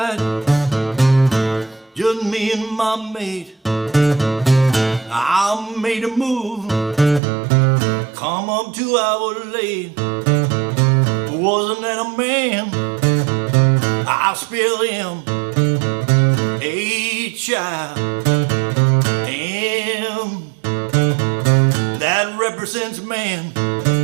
just me and my mate. I made a move, come up 2 hours late. Wasn't that a man? I spilled him a child, and that represents man.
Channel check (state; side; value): drops out; left; at 7.2 s